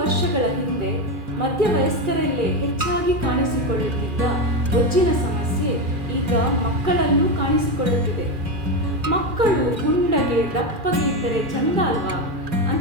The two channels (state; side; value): late; left; 2.4 ms